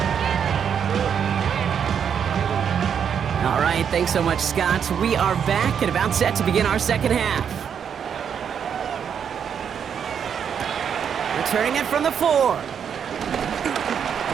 All right, thanks so much, Scott. We are back and about set to begin our 2nd half. Returning it from the 4.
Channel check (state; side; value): quieter; left; 7.7 dB